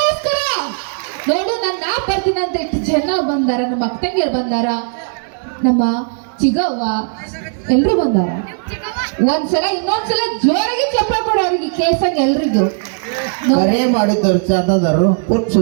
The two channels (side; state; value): left; silent; 60 dB below the other